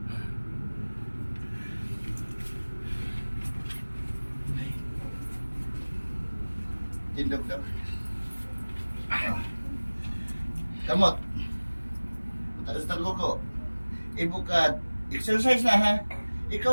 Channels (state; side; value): inverted; both; correlation -1.00